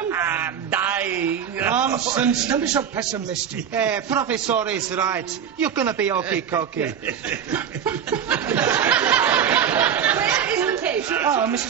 I'm dying. Nonsense. Don't be so pessimistic. Professor is right. You're gonna be okay-cokey. Where is the patient? Ah,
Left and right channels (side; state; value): left; quieter; 8.3 dB